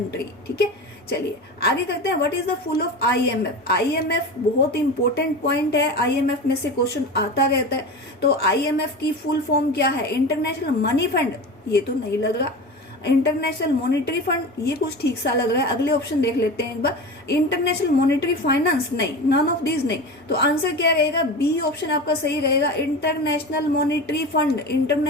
ठीक है, चलिए आगे करते हैं। What is the full of IMF, IMF बहुत इंपॉर्टेंट पॉइंट है, आईएमएफ में से क्वेश्चन आता रहता है। तो आईएमएफ की फुल फॉर्म क्या है, इंटरनेशनल मनी फंड, ये तो नहीं लग रहा। इंटरनेशनल मॉनिटरी फंड, ये कुछ ठीक सा लग रहा है। अगले ऑप्शन देख लेते हैं एक बार। इंटरनेशनल मॉनिटरी फाइनेंस, नहीं, नन ऑफ दीज नहीं। तो आंसर क्या रहेगा, बी ऑप्शन आपका सही रहेगा, international monetary fund.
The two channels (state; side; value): normal; both; correlation 0.29